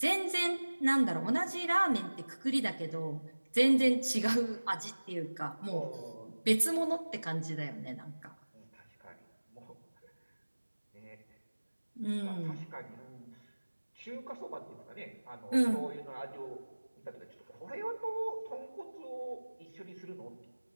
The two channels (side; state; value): both; inverted; correlation -1.00